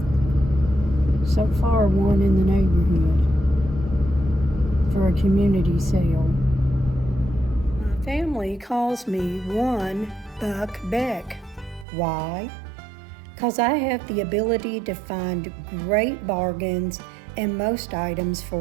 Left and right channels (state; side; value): drops out; left; at 11.9 s